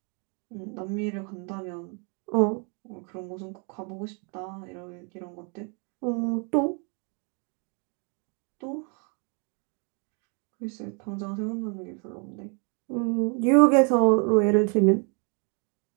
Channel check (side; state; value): left; quieter; 36.2 dB